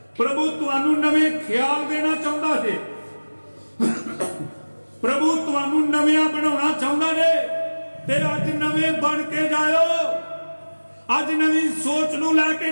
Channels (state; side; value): inverted; both; correlation -1.00